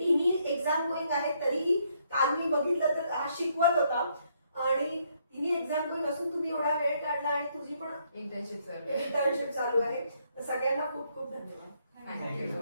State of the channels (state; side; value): inverted; both; correlation -0.72